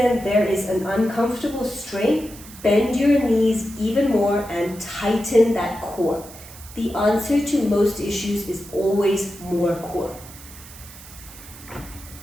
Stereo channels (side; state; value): right; noise; hiss, 18 dB below the sound